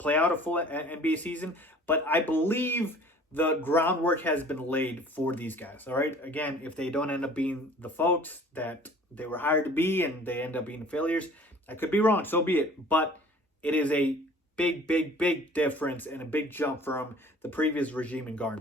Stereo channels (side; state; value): both; normal; correlation 0.49